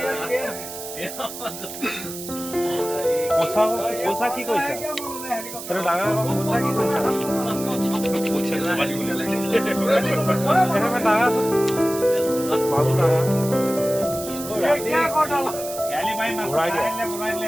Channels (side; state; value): right; noise; hiss, 10 dB below the sound